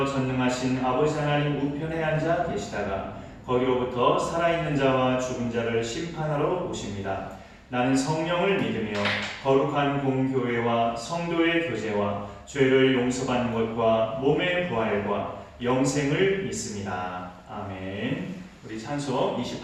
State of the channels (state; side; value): identical; both; correlation 1.00